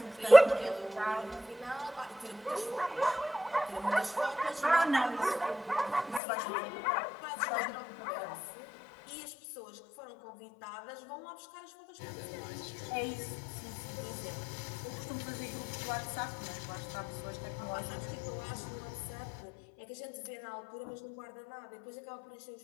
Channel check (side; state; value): right; drops out; at 6.2 s